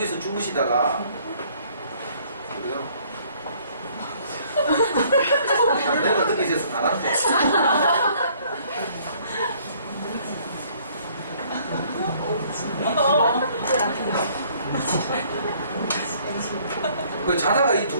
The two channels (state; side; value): inverted; both; correlation -0.60